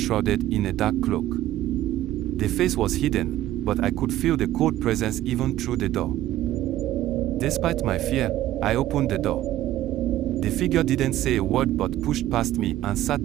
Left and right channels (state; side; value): quieter; left; 14.0 dB